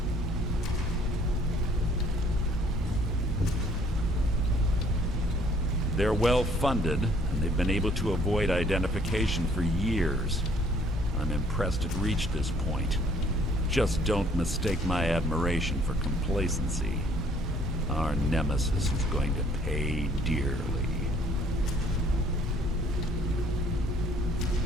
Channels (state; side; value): normal; both; correlation 0.61